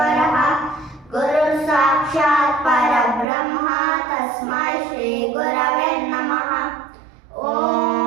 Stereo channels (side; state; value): left; drops out; at 3.2 s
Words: ಗುರು ಸಾಕ್ಷಾತ್ ಪರಬ್ರಹ್ಮ ತಸ್ಮೈ ಶ್ರೀ ಗುರವೇ ನಮಃ.